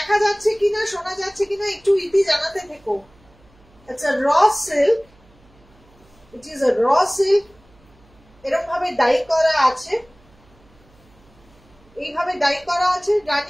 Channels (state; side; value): noise; right; hum, 30 dB below the sound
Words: যাচ্ছে কিনা শোনা যাচ্ছে কিনা একটু ইতি জানাতে থেকো। It's a raw silk. It is a raw silk. এরকম ভাবে ডাই করা আছে, এইভাবে ডাই করা আছে,